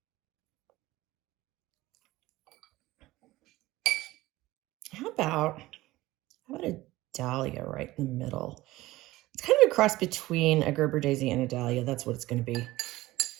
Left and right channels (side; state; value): left; quieter; 17.9 dB